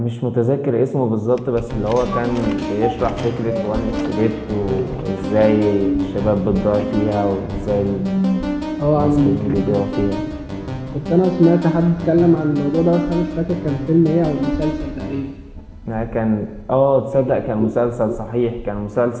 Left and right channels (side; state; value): both; identical; correlation 1.00